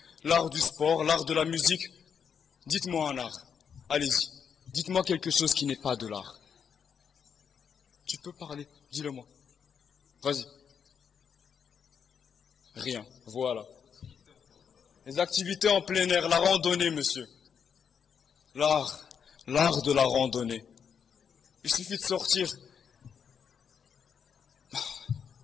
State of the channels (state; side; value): quieter; right; 7.1 dB